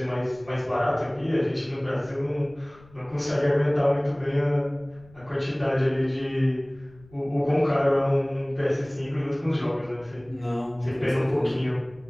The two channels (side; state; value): left; noise; rumble, 25 dB below the sound